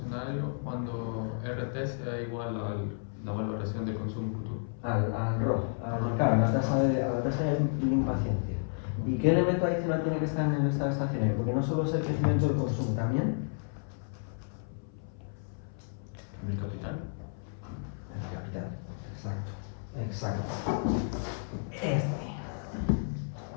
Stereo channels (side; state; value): right; silent; 57 dB below the other